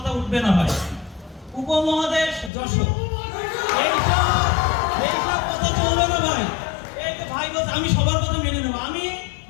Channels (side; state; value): right; drops out; at 2.5 s